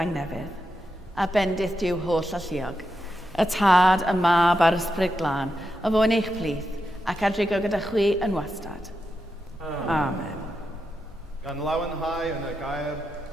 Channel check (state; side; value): normal; both; correlation 0.87